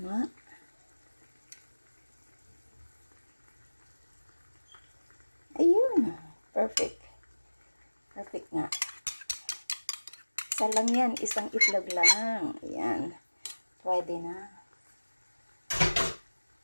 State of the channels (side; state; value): both; inverted; correlation -1.00